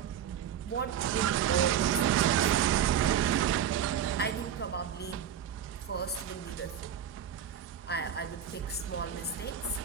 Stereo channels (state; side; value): quieter; left; 9.1 dB